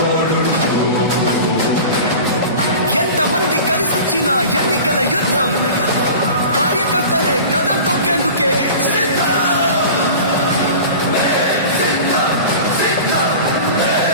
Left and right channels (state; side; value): inverted; both; correlation -0.37